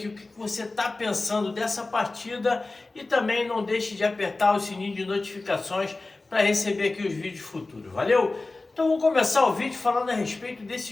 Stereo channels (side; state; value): right; quieter; 3.3 dB